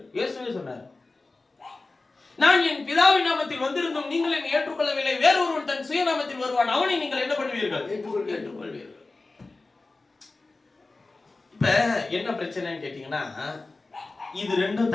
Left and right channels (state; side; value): quieter; right; 3.4 dB